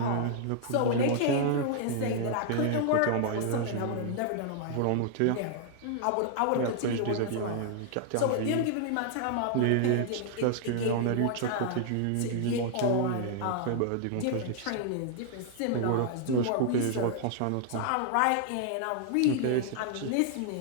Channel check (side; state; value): both; different; correlation 0.00